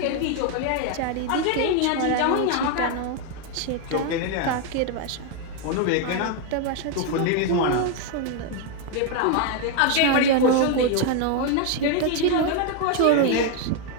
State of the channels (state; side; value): different; both; correlation 0.01